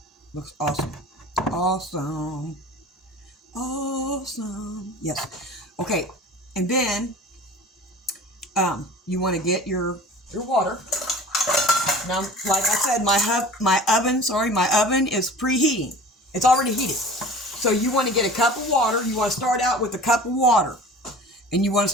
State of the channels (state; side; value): normal; both; correlation 0.41